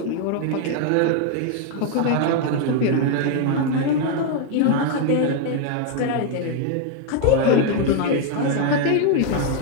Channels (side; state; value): both; different; correlation 0.01